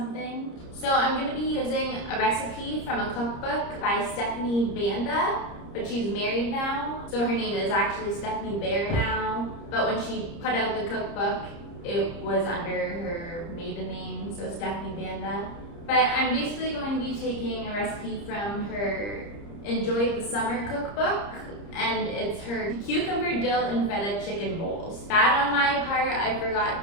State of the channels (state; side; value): late; right; 30 ms